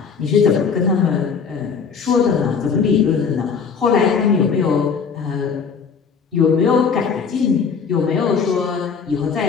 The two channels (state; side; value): quieter; right; 6.0 dB